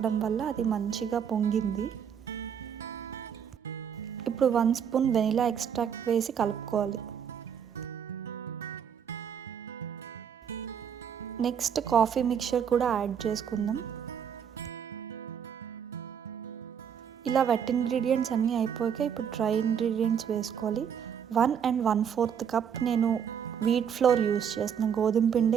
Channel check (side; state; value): left; quieter; 7.9 dB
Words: వల్ల అది మంచిగా పొంగింది. ఇప్పుడు 1 spoon వెనిలా ఎక్స్ట్రాక్ట్ వేసి కలుపుకోవాలి. నెక్స్ట్ కాఫీ మిక్చర్ కూడా యాడ్ చేసుకుందాం. ఇలా వెట్ ఇంగ్రీడియంట్స్ అన్నీ అయిపోయాక ఇప్పుడు డ్రై ఇంగ్రీడియంట్స్ వేసుకోవాలి. 1 and 1/4 cup నేను వీట్ ఫ్లోర్ యూస్ చేస్తున్నాను, గోధుమ